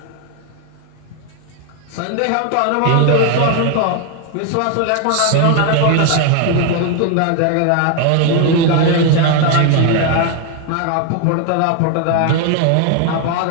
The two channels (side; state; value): both; different; correlation 0.01